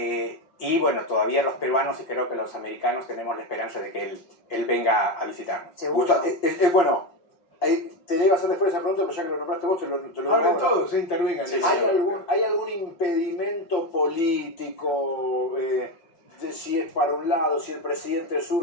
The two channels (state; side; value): late; right; 5.8 ms